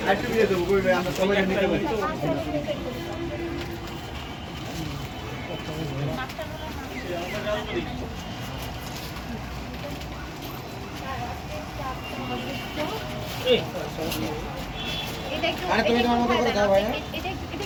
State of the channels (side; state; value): both; identical; correlation 1.00